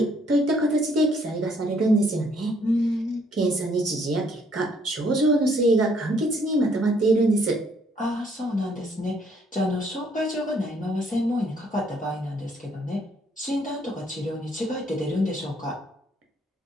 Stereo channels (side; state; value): both; normal; correlation 0.66